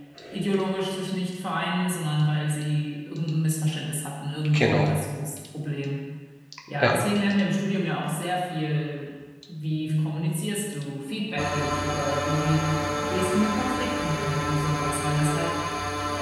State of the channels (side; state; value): both; identical; correlation 1.00